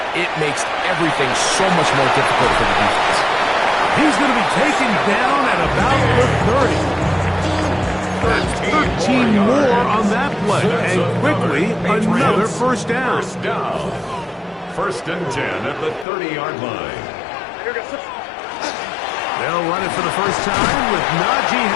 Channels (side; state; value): right; drops out; at 16.1 s